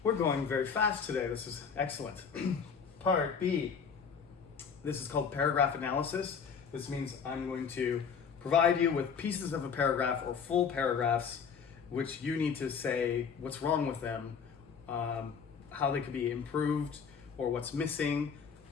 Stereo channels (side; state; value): right; quieter; 6.4 dB